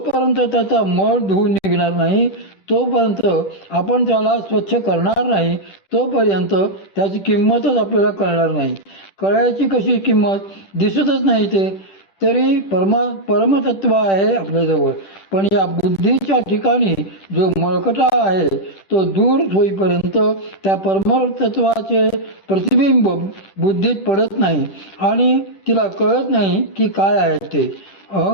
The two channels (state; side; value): late; right; 10 ms